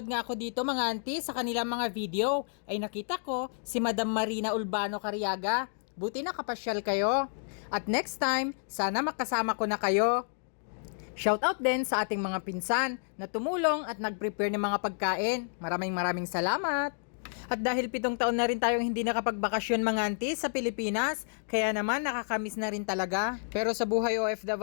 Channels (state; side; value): silent; right; digital silence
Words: nga ako dito mga auntie sa kanilang mga video, ay nakita ko si Madam Marina Urbano Cariaga. Buti nakapasyal kayo. At next time, sana makasama ko na kayo. Shoutout din sa ating mga pinsan na tumulong at nag-prepare ng mga pagkain. Maraming salamat. At dahil 7 taon na rin tayong hindi nakapagbakasyon mga auntie sa Pilipinas, kaya naman nakakamiss na rin talaga. Pero sa buhay